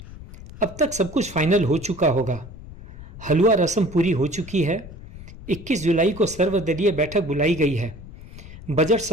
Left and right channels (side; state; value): left; noise; rumble, 16 dB below the sound